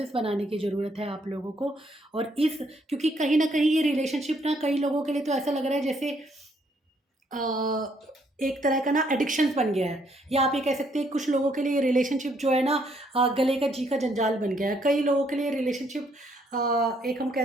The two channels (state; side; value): normal; both; correlation 0.70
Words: बनाने की ज़रूरत है आप लोगों को। और इस क्योंकि कहीं न कहीं ये रिलेशनशिप ना कई लोगों के लिए तो ऐसा लग रहा है जैसे एक तरह का ना एडिक्शंस बन गया है, या आप ये कह सकते हैं कुछ लोगों के लिए रिलेशनशिप जो है ना गले का जी का जंजाल बन गया है। कई लोगों के लिए रिलेशनशिप एक हम